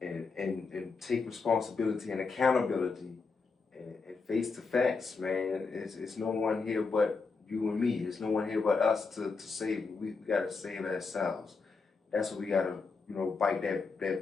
and take responsibility and accountability and face the facts, man. It's no one here but you and me. There's no one here but us to save. We gotta save ourselves. That's what we gotta, bite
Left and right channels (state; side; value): quieter; right; 4.5 dB